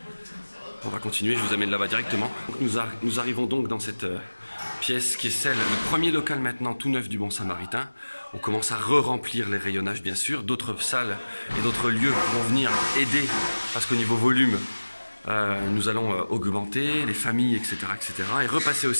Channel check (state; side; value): inverted; both; correlation -1.00